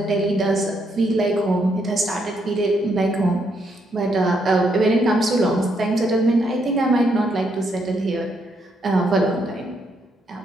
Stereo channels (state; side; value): normal; both; correlation 0.76